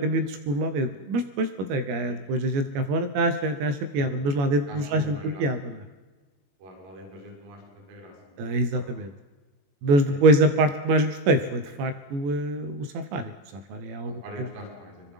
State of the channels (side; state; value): left; late; 21 ms